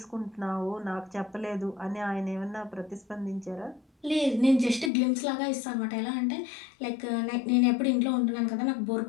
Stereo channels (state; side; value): drops out; right; at 4.9 s